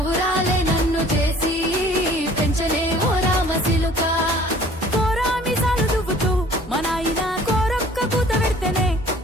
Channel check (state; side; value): normal; both; correlation 0.51